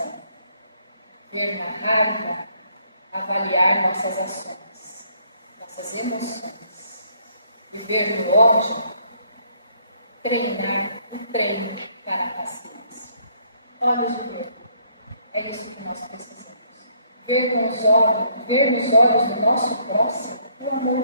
Ver na raiva avaliar nossas ações, nossas emoções. E ver no ódio treinar um treino para a paciência. Olhos de ver. É isso que nós precisamos. Ver nos olhos do nosso próximo o amor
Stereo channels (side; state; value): both; inverted; correlation -0.66